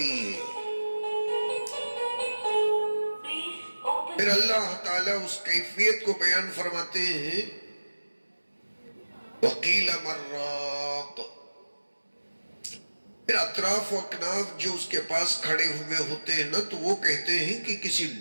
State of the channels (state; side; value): inverted; both; correlation -1.00